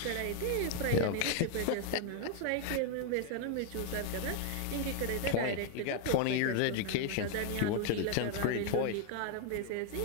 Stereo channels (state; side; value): different; both; correlation 0.00